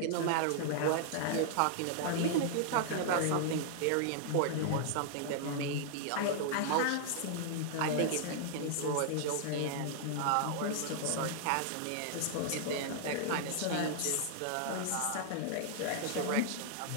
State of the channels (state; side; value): different; both; correlation -0.01